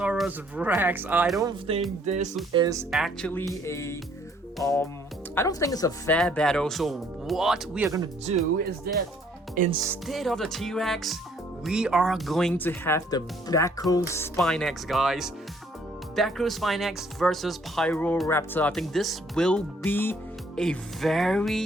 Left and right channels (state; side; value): normal; both; correlation 0.63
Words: Rex. I don't think this is actually a I don't think it's a fair battle. So what we are gonna do is that instead of the T-Rex, we are going to have the Brachiospinax, guys. Brachiospinax versus Pyroraptor. I think this will be a